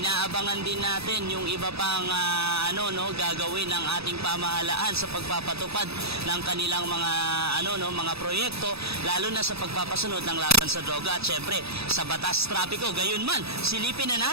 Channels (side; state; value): left; late; 0.78 ms